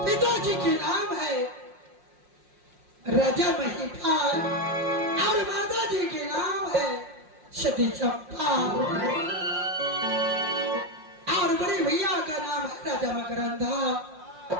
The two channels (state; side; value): late; left; 5.6 ms